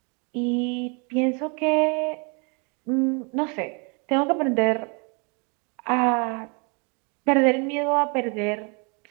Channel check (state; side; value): quieter; left; 34.2 dB